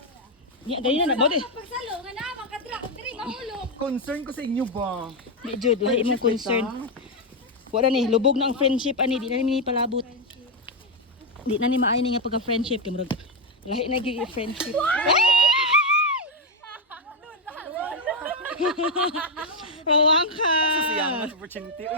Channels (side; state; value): both; normal; correlation 0.03